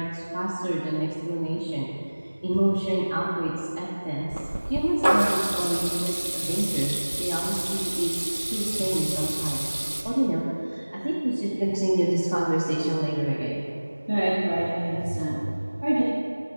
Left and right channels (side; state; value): both; inverted; correlation -1.00